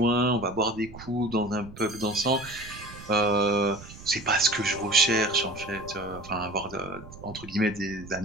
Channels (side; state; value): right; noise; rumble, 17 dB below the sound